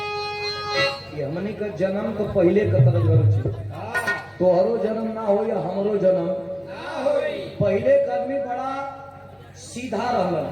हमनी का जन्म तो पहले का तरज हो, तोहरो जन्म ना हो या हमरो जन्म पहले का आदमी बड़ा सीधा रहल।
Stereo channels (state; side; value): identical; both; correlation 1.00